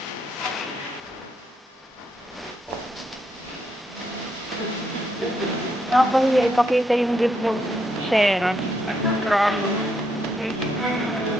ako ipakita yung report sir.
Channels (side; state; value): both; normal; correlation 0.77